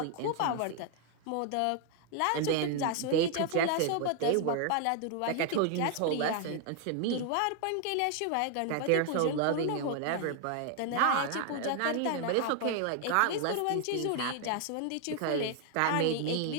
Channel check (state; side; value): different; both; correlation 0.00